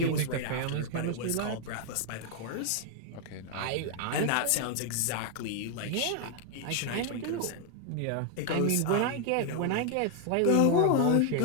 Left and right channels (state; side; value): different; both; correlation 0.00